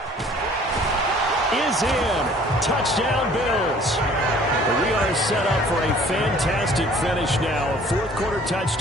is in. Touchdown, Bills. We are set up for a fantastic finish now. A 4th quarter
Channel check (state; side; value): normal; both; correlation 0.53